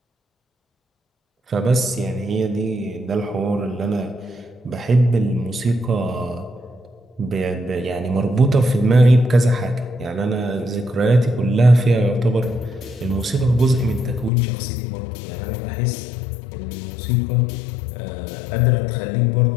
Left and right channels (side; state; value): right; drops out; at 14.3 s